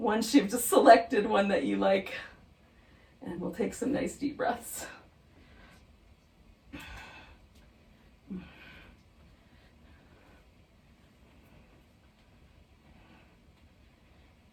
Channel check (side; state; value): both; identical; correlation 1.00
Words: you've just selected one that you like. And we'll take some nice deep breaths.